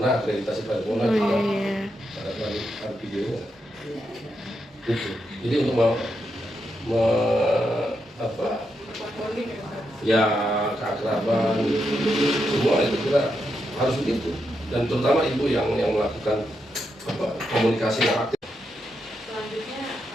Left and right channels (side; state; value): both; normal; correlation 0.83